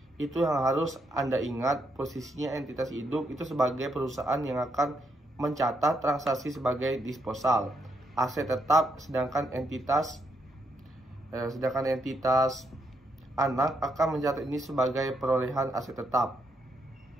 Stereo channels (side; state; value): both; normal; correlation 0.78